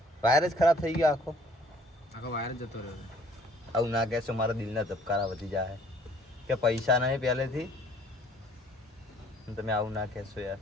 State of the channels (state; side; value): normal; both; correlation 0.58